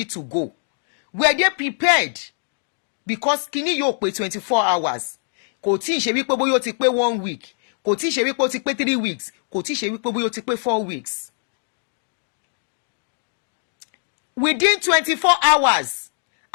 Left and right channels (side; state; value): right; silent; digital silence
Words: to go? Were they prepared? Because Kini yóò pé 24 hours. Kò tí ì ṣe wípé bóyá ó ti pé 1 week. Kò tí ì ṣe wípé ó ti pé 3 weeks. Kò tí ì ṣe wípé bóyá ó ti pé 4 weeks. Within 24 hours,